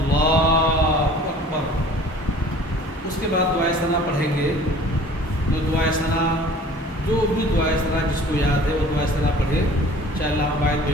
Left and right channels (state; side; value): normal; both; correlation 0.48